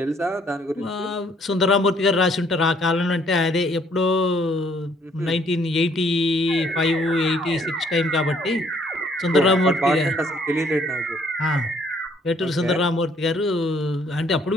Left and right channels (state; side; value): normal; both; correlation 0.64